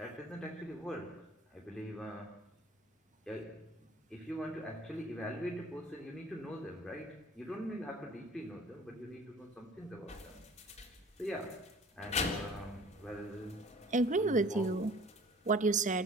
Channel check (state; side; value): normal; both; correlation 0.49